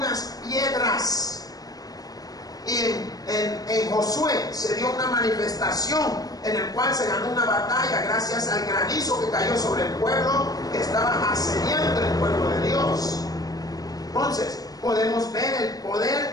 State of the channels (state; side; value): late; right; 0.18 ms